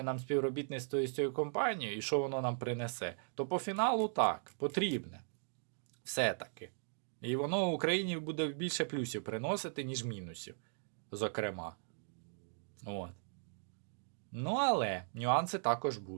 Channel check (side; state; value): left; silent; digital silence